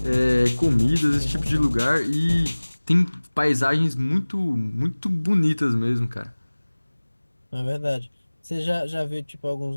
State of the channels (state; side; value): inverted; both; correlation -1.00